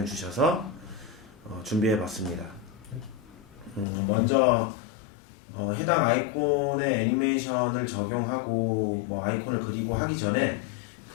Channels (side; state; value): right; drops out; at 3.9 s